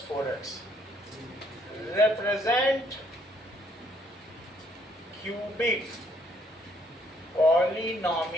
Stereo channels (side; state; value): both; normal; correlation 0.67